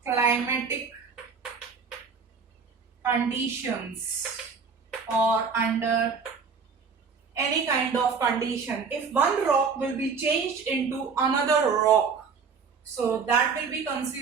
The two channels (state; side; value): quieter; left; 5.5 dB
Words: climatic conditions or under any kind of condition. If one rock will be changed into another rock, so that will be